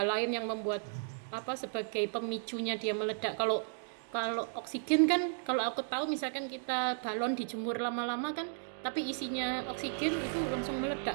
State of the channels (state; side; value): silent; left; digital silence